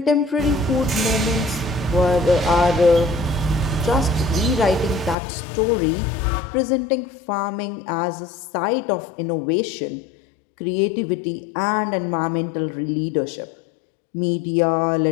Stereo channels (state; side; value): drops out; right; at 5.2 s